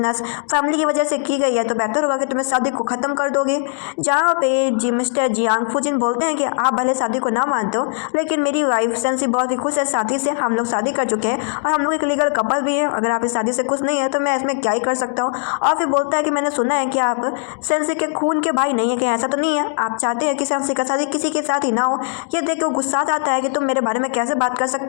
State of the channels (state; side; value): silent; right; digital silence